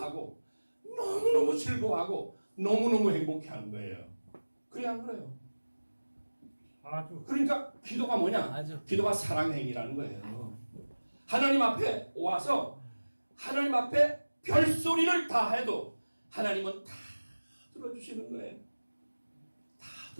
너무너무 즐거워하고, 너무너무 행복해하는 거예요. 그래, 안 그래요? 아주. 그러니까 기도가 뭐냐? 아주. 기도가 사랑의 행위라는 거예요. 하나님 앞에 와서 하나님 앞에 별소리를 다 해도 하나님은 다 들어주시는 거예요. 다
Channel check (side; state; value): both; inverted; correlation -1.00